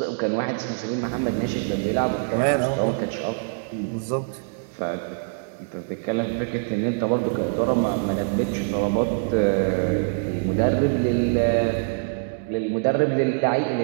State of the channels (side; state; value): left; silent; digital silence